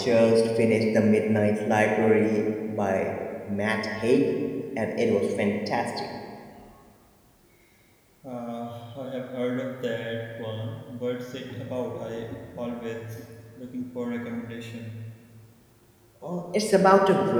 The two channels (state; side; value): identical; both; correlation 1.00